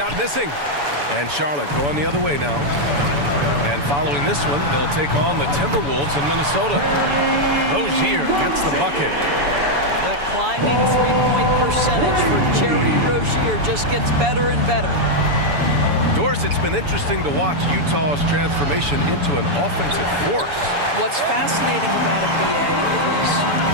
missing. And Charlotte going the other way now. And following this one, they'll take on the Timberwolves in Minnesota. Rozier gets the bucket. That climbing three-point percentage for Jerry Rozier just gets better and better. Doris, it's been interesting to watch Utah's transformation into an offensive force. What's fascinating about it, BA,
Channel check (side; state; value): left; late; 7.0 ms